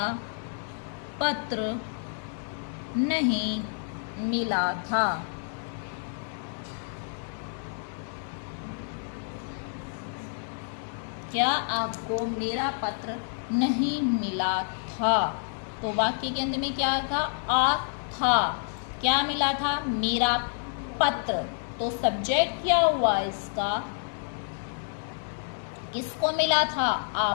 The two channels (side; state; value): right; silent; digital silence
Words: पत्र नहीं मिला था? क्या आपको मेरा पत्र नहीं मिला था? तो वाक्य के अंत में क्या था? आ था। क्या मिला था? मेरा पत्र। तो सब्जेक्ट क्या हुआ इसका? किसको मिला था?